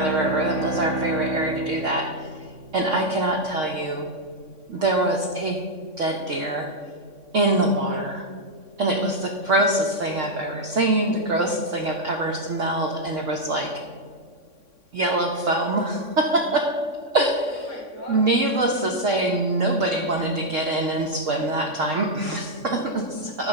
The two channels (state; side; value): late; left; 3.6 ms